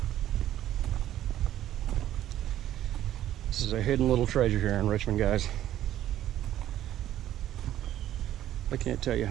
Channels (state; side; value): quieter; left; 12.4 dB